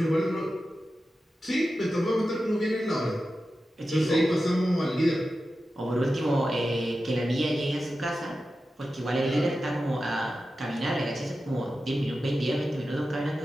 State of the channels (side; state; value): both; normal; correlation 0.92